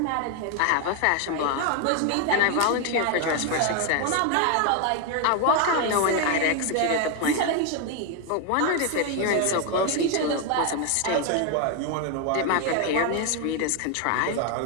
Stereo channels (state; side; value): different; both; correlation 0.01